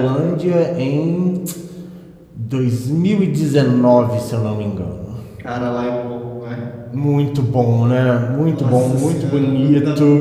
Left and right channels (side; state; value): both; identical; correlation 1.00